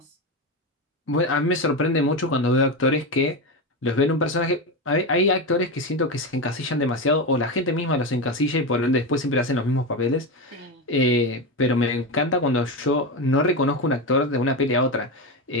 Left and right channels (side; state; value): both; normal; correlation 0.16